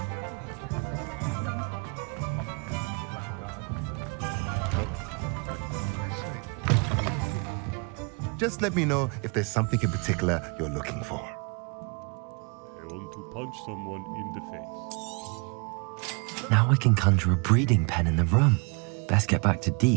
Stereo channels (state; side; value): quieter; left; 33.4 dB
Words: Just let me know if there's something in particular you're looking for. I want to punch someone in the face. Now I can conjure a breeding pen in the room. Best get back to